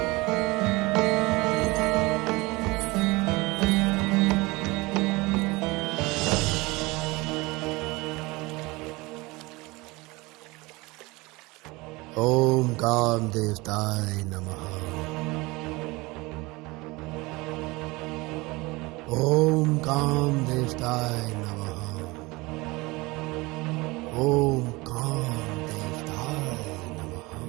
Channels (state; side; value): quieter; left; 23.0 dB